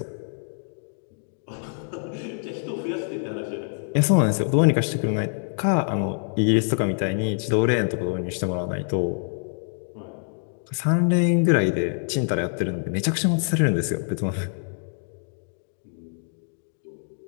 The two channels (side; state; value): right; silent; digital silence